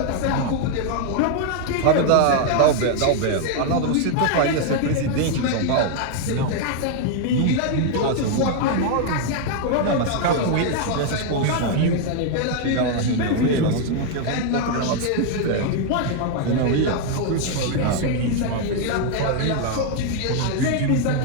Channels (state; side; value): different; both; correlation 0.00